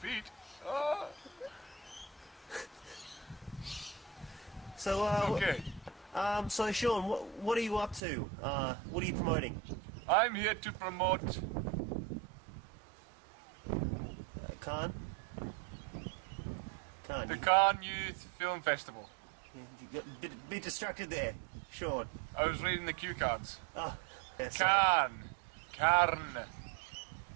Oh, So, okay. so Sean, what are you up to? What are you promoting? I'm here to promote... Khan? Khan, the Cannes Youth Film Festival. you got a bit distracted there, Sean. I was reading the cue cards. Oh, yeah, sorry. Carn.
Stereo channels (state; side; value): drops out; left; at 8.0 s